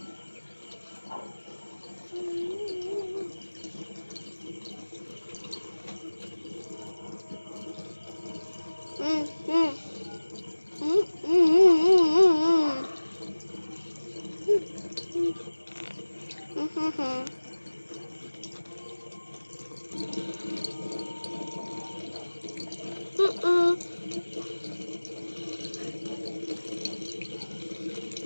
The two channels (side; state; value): both; inverted; correlation -1.00